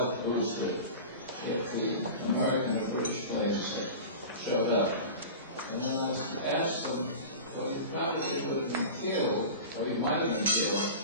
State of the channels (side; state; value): both; inverted; correlation -0.33